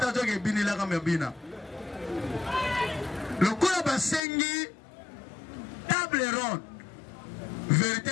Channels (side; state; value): right; drops out; at 4.2 s